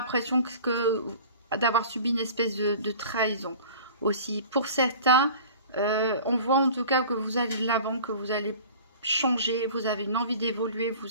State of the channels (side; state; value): both; inverted; correlation -0.43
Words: d'avoir subi une espèce de trahison aussi. Pour certains, on voit en tout cas que vous allez de l'avant, que vous allez changer, vous avez une envie d'évoluer,